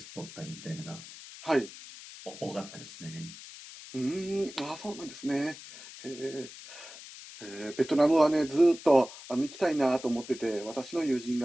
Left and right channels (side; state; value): left; noise; hiss, 15 dB below the sound